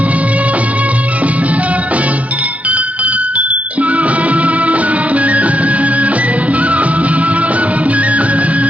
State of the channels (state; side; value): late; left; 0.067 ms